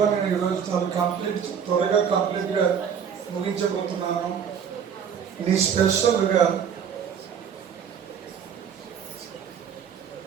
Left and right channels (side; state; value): left; quieter; 7.6 dB